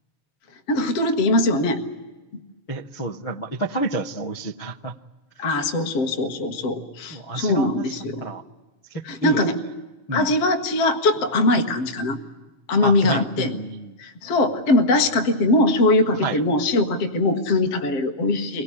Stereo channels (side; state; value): right; late; 7.5 ms